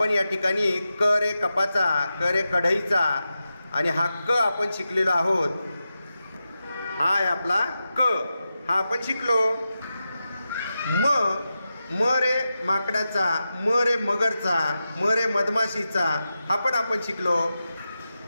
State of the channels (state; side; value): inverted; both; correlation -0.91